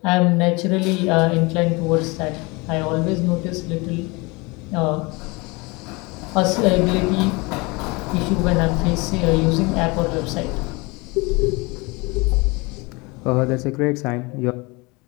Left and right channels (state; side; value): quieter; right; 26.1 dB